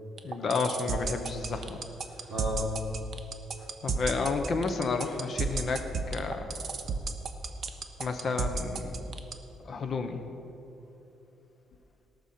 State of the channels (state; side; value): normal; both; correlation 0.73